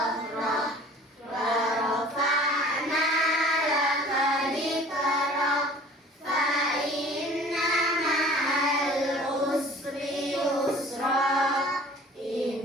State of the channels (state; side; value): normal; both; correlation 0.47